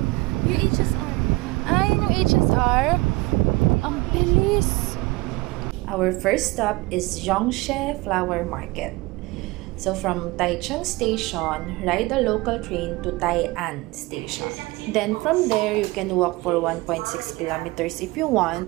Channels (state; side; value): quieter; left; 21.9 dB